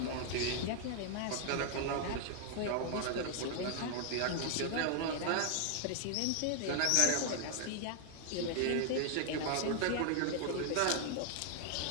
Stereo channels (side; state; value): both; different; correlation 0.00